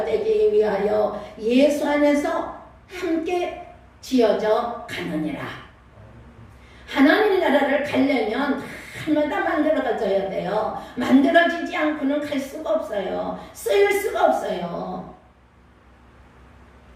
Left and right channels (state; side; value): identical; both; correlation 1.00